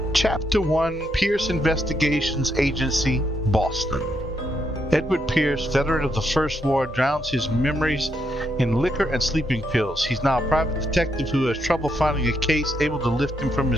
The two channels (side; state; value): both; normal; correlation 0.78